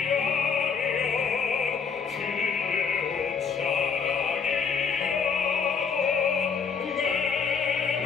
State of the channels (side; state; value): right; quieter; 6.0 dB